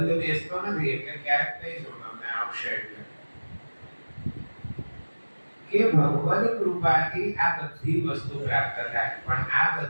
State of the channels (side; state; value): both; inverted; correlation -1.00